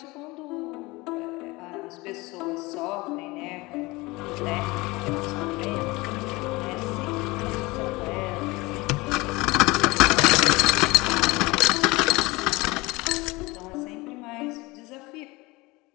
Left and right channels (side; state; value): right; quieter; 22.7 dB